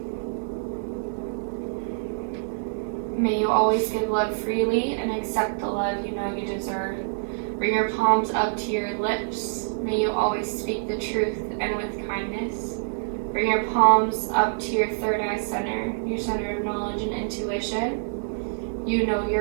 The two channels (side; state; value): left; silent; digital silence